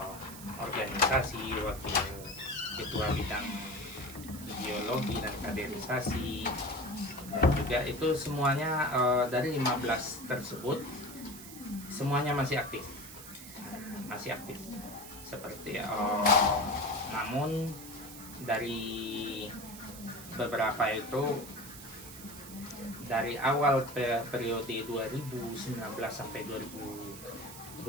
organisasi, wakil ketua bidang ideologi dan kaderisasi, dan juga itu semuanya dari 15 tersebut semuanya masih aktif, seperti namun dari beberapa itu dari awal periode 2019 sampai 2024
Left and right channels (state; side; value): noise; right; hiss, 14 dB below the sound